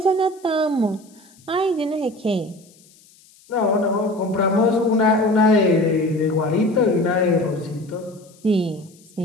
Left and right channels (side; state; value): left; noise; hiss, 28 dB below the sound